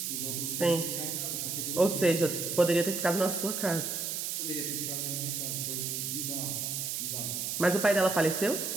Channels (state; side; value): noise; right; hiss, 2 dB below the sound